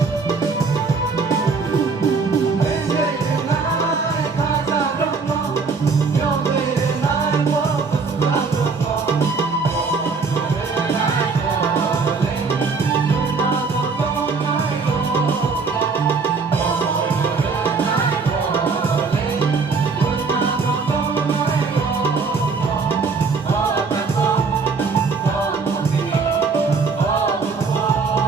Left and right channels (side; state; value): left; quieter; 4.7 dB